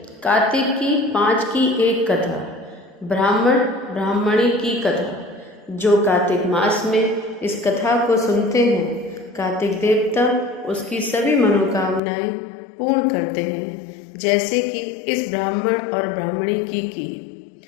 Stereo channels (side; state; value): right; drops out; at 12.0 s